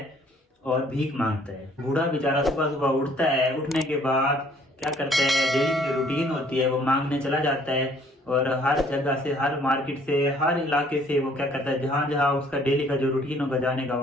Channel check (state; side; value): normal; both; correlation 0.60